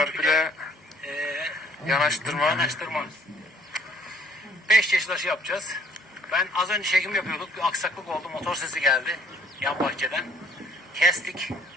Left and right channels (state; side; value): normal; both; correlation 0.60